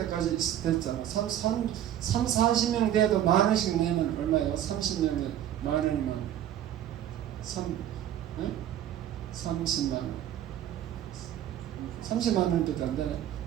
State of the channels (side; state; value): left; quieter; 11.3 dB